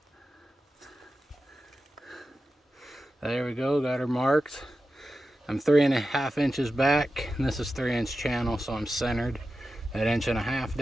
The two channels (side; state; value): both; normal; correlation 0.92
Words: There we go, got her marked. I'm 3.5 inches back, and this is 3-inch channel, so I'm centered at 1.5 inches